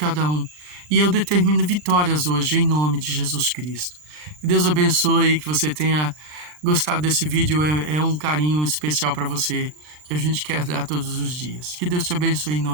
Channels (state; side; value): late; left; 39 ms